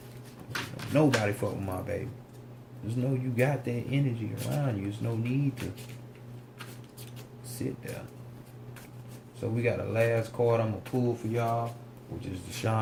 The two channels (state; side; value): identical; both; correlation 1.00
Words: Nobody fuck with my baby. Just know you got that energy around you. There's no need to sit there. So we got a last card I'm gonna pull for y'all, which is the